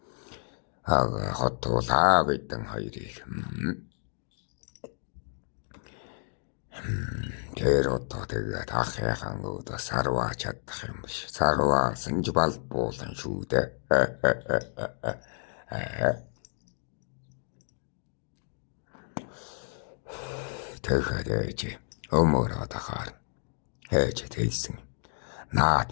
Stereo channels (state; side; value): silent; right; digital silence